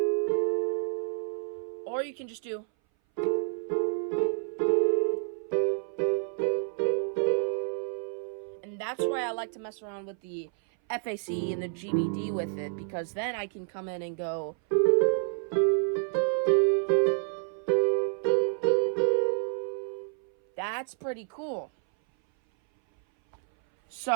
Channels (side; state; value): left; silent; 58 dB below the other